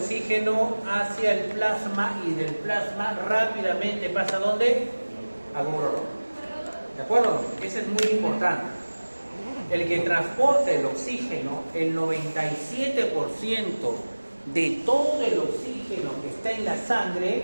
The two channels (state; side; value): inverted; both; correlation -1.00